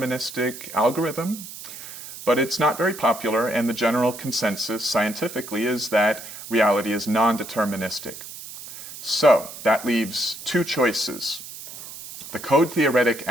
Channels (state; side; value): noise; right; hiss, 13 dB below the sound